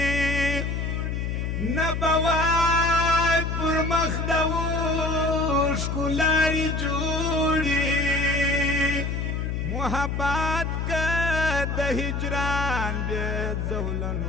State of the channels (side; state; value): left; noise; hum, 1 dB below the sound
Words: نبوای پر مخ د ښکلارې جوړي محبت که د هجران بې